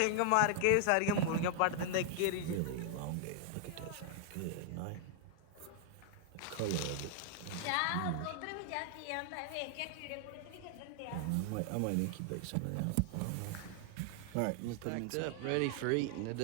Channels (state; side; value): different; both; correlation 0.00